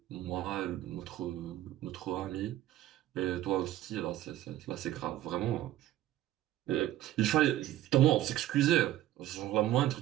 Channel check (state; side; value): quieter; left; 13.9 dB